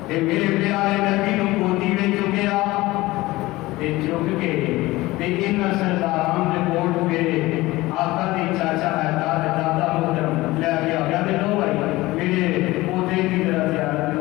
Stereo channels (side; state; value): right; quieter; 19.2 dB